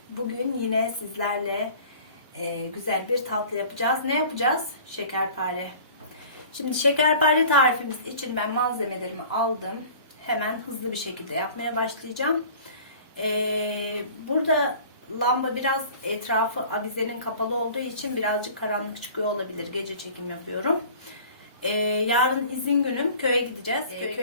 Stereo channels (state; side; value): inverted; both; correlation -0.45